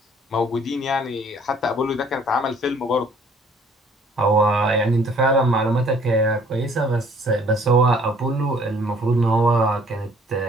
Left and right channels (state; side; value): normal; both; correlation 0.58